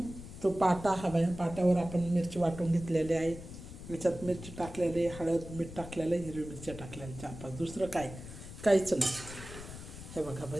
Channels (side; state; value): left; noise; rumble, 12 dB below the sound